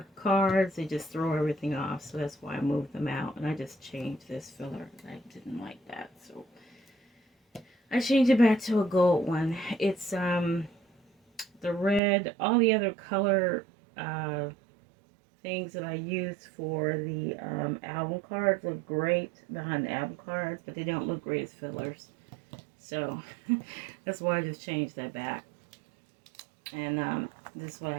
cards, they just throw everything off. So that's why I moved them out. And I just changed this filler. I didn't like that. So I changed it back to a gold one. It's the red, all the other color things that I use for the album cards look great behind the album cards, but they don't look great as fillers. So that's why I just changed that back. And this is what I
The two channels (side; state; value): left; drops out; at 12.0 s